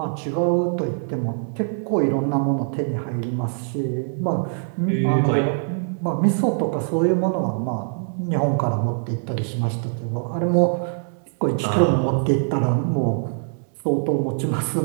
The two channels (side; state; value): left; silent; digital silence